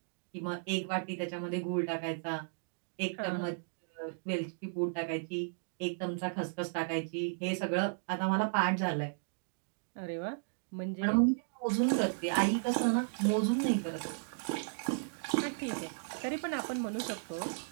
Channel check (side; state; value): left; silent; digital silence